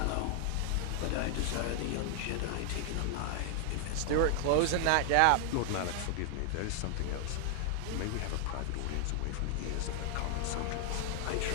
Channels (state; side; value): different; both; correlation 0.00